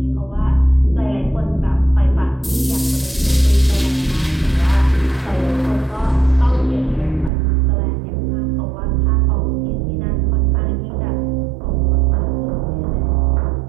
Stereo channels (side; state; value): left; drops out; at 7.3 s